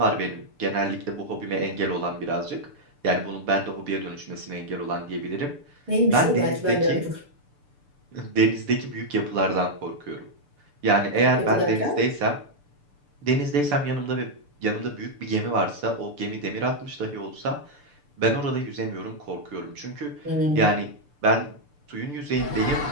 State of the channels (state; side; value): late; left; 6.8 ms